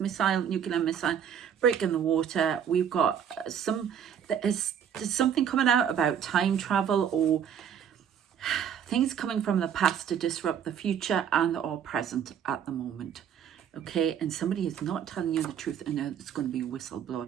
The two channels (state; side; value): quieter; left; 8.5 dB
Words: nuclear missile, breaking the water. We've got there's something coming out about time travel or things coming from the past to disrupt the future and or present at the moment. Okay, and somebody is not telling you the truth and it's going to be a whistleblower.